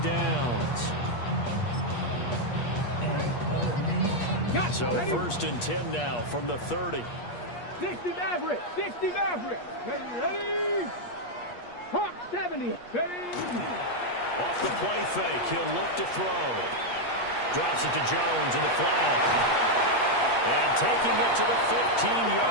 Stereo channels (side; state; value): right; late; 8.4 ms